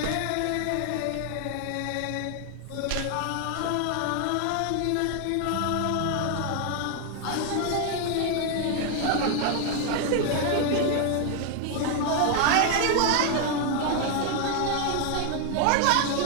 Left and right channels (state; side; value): different; both; correlation 0.00